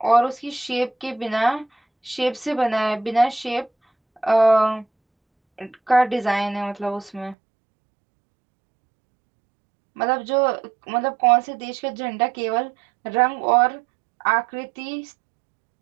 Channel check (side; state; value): left; drops out; at 7.4 s